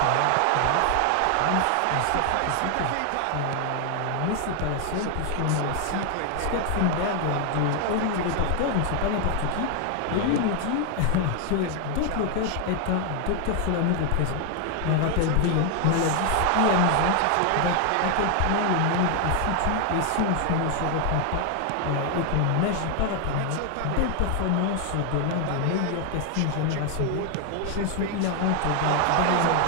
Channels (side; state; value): both; different; correlation 0.00